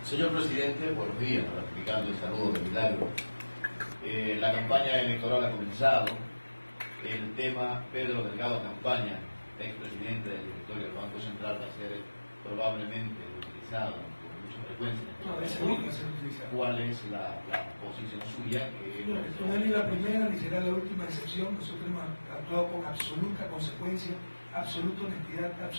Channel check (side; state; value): both; inverted; correlation -1.00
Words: Señor presidente, buenos días, ratificando el saludo de Milagro. La campaña electoral ha comenzado, el tema Pedro Delgado Campaña, expresidente del directorio del Banco Central, va a ser probablemente utilizado con mucha frecuencia. ¿Cuál es la posición suya? No es ni la primera ni será la última excepción. Nosotros hemos actuado con absoluta consecuencia, absoluta honestidad,